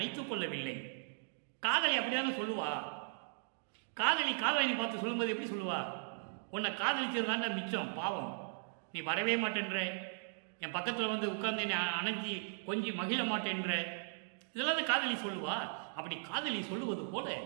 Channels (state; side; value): silent; left; digital silence